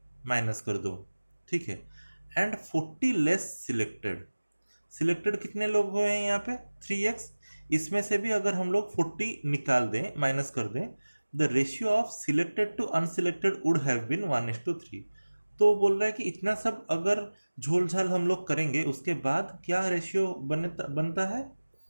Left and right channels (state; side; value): inverted; both; correlation -1.00